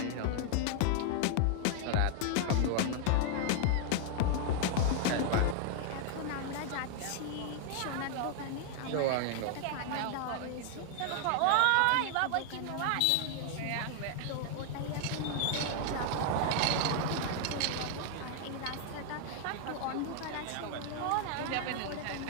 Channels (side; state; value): both; different; correlation 0.00